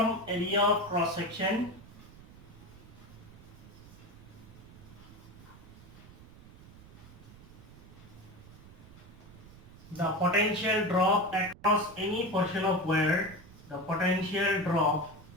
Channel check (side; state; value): right; noise; rumble, 19 dB below the sound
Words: the potential drop across any portion of wire,